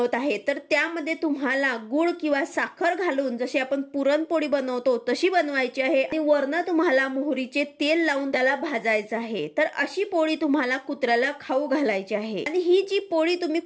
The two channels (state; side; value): identical; both; correlation 1.00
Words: आहे तर त्यामध्ये तुम्हाला गुळ किंवा साखर घालून, जशी आपण पुरणपोळी बनवतो तशी बनवायची आहे आणि वरनं तुम्हाला मोहरीचे तेल लावून त्याला भाजायचं आहे. तर अशी पोळी तुम्हाला कुत्र्याला खाऊ घालायची आहे. आणि ही जी पोळी तुम्ही